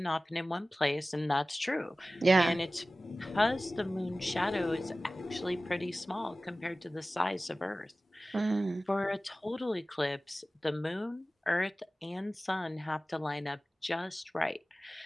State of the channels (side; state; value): both; normal; correlation 0.97